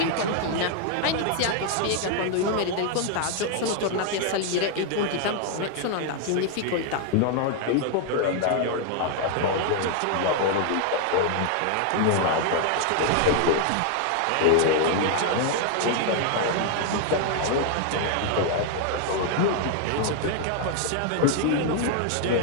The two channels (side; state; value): both; different; correlation 0.00